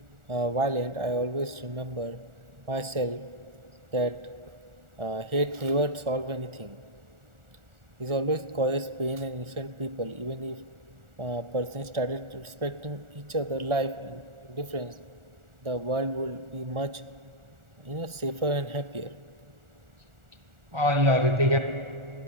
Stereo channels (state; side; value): late; left; 1.4 ms